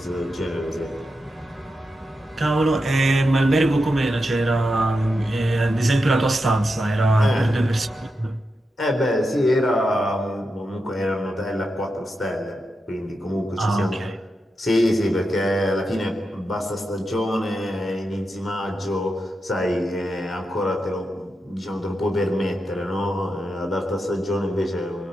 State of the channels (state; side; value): normal; both; correlation 0.88